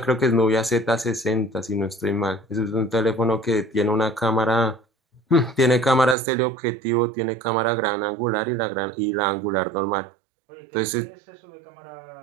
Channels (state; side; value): drops out; left; at 6.2 s